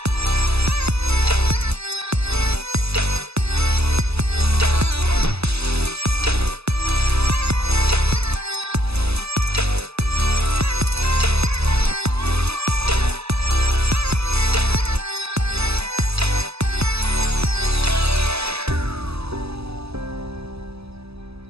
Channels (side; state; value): left; late; 0.79 ms